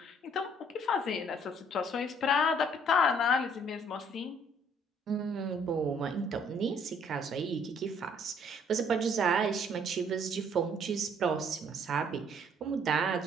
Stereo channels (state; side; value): normal; both; correlation 0.62